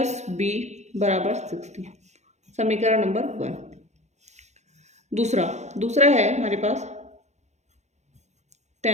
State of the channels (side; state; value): left; late; 0.33 ms